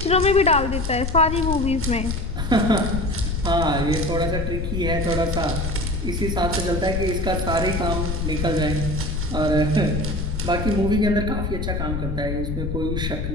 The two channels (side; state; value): left; noise; rumble, 2 dB below the sound